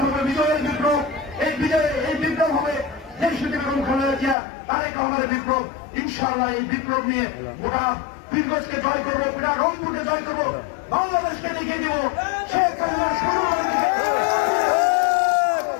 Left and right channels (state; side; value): drops out; right; at 4.4 s